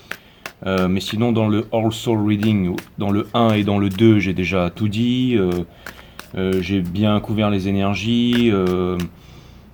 Mais sinon, dans le All Soul Reading, dans le 1 et dans le 2, j'ai déjà tout dit. J'ai bien couvert les énergies.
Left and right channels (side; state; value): both; identical; correlation 1.00